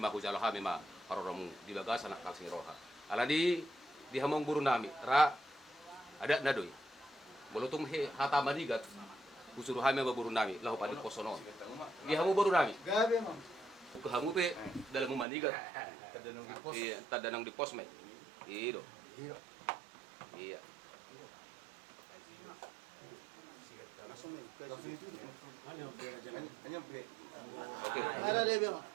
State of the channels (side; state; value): left; drops out; at 15.2 s